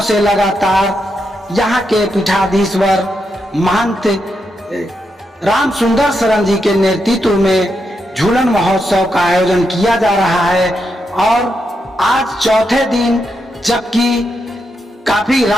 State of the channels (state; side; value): normal; both; correlation 0.83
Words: से लगातार यहाँ के पीठाधीश्वर महंत राम सुंदर शरण जी के नेतृत्व में झूलन महोत्सव का आयोजन किया जा रहा है। और आज चौथे दिन, जबकि काफी